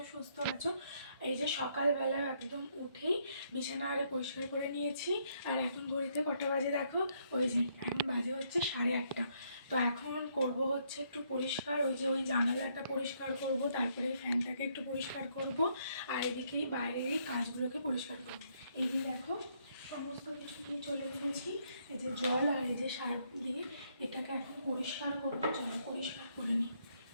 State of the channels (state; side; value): inverted; both; correlation -0.72